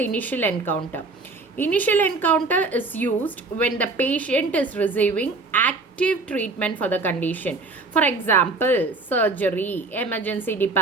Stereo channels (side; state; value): left; quieter; 3.5 dB